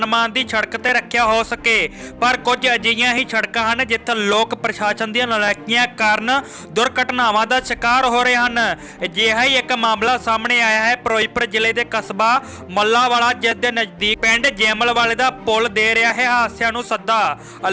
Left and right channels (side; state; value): both; identical; correlation 1.00